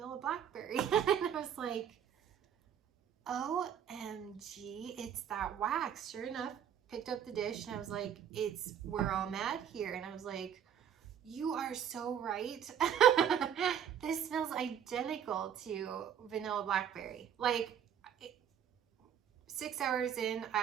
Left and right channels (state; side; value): quieter; left; 8.9 dB